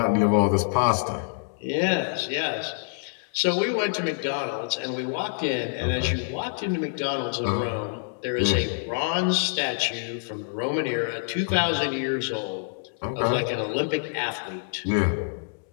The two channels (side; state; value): right; silent; digital silence